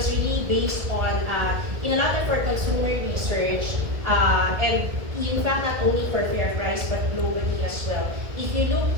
really based on, in a lot of our consumer research, and in fact not only for Fair Price but globally as well. If you look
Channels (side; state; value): left; late; 1.7 ms